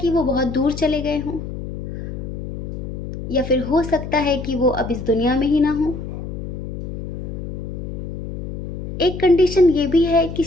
वो बहुत दूर चले गए हों, या फिर हो सकता है कि वो अब इस दुनिया में ही ना हो। एक कंडीशन ये भी है कि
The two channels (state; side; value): noise; left; hum, 7 dB below the sound